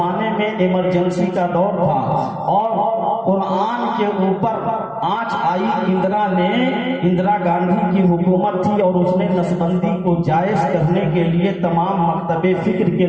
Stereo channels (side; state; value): both; identical; correlation 1.00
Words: میں ایمرجنسی کا دور تھا اور قرآن کے اوپر آنچ آئی. اندرا گاندھی کی حکومت تھی اور اس نے نسبندی کو جائز کرنے کے لیے تمام مکتب فکر کے